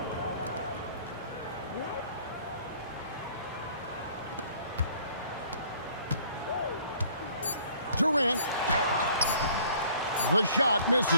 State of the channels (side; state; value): both; inverted; correlation -0.55